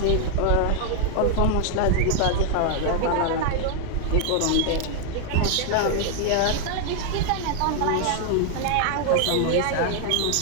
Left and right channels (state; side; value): different; both; correlation 0.00